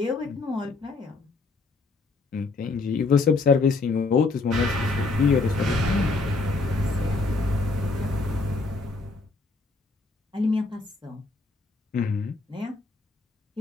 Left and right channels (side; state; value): right; quieter; 3.6 dB